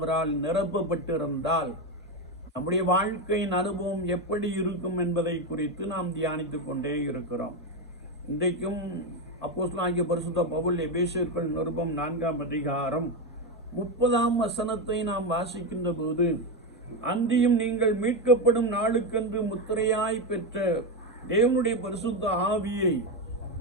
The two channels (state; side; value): normal; both; correlation 0.11